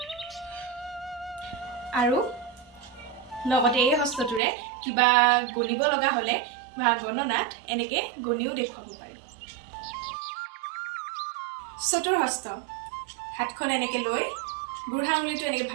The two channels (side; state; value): left; drops out; at 4.4 s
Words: আৰু লগতে এই হস্তটোৰে কিবা গণিব লগা হলে বা গণনাত এনেকে গণিও দেখুৱাব পাৰি চতুৰ্হস্ত হাতখন এনেকে লৈ বুঢ়া আঙুলিটো এনেকে